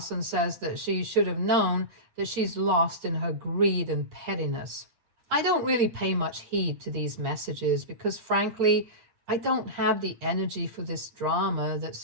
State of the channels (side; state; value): left; late; 8.5 ms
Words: and says that she should have known that she's lost in her greed and pettiness. I don't really pay much heed to these messages because, frankly, I don't have the energy for this drama that's